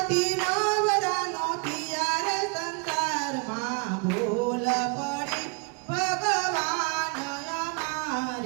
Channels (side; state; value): left; quieter; 32.8 dB